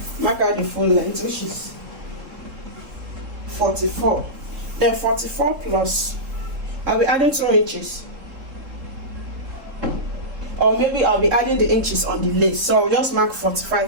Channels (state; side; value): late; left; 3.7 ms